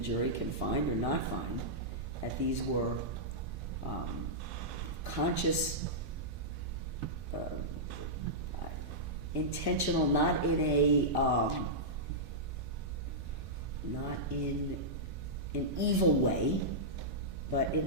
jury can find or not find that these were conscious, intentional, not in an evil way, but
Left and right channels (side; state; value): both; normal; correlation -0.12